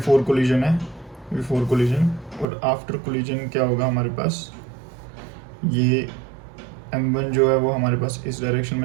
कोलिजन है, और आफ्टर कोलिजन क्या होगा हमारे पास, ये m1 जो है वो हमारे पास इस डायरेक्शन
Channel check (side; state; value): left; drops out; at 2.5 s